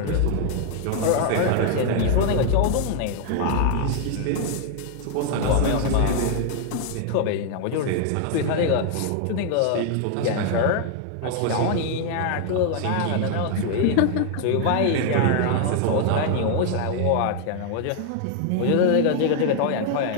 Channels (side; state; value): both; different; correlation 0.00